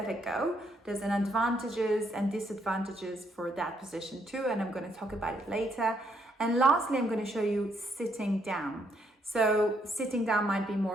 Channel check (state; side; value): normal; both; correlation 0.73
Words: a go. There's an advantages and disadvantages for that position too, and I'm going to talk about it later. And lastly, I'm going to show you sitting down. So sitting down might be